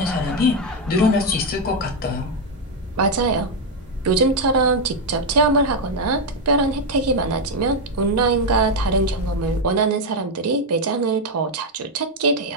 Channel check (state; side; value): normal; both; correlation 0.03